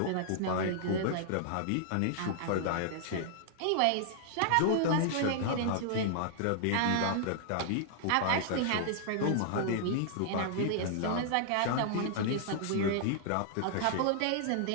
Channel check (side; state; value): both; different; correlation -0.01